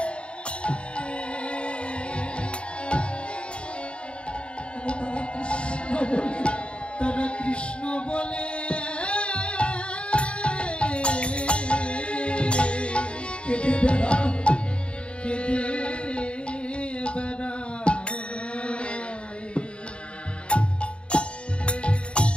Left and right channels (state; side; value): late; right; 0.057 ms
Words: তারা কৃষ্ণ বলে কেঁদে বেড়ায় কেঁদে বেড়ায়